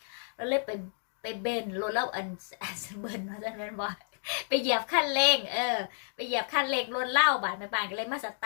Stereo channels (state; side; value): silent; right; digital silence